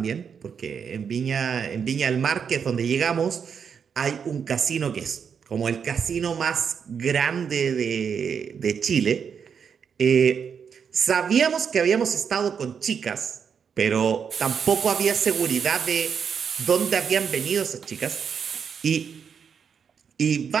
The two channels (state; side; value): quieter; left; 6.9 dB